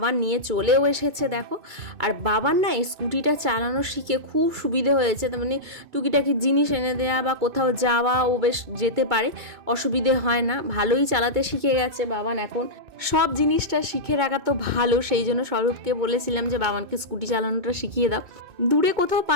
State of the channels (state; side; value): late; left; 2.2 ms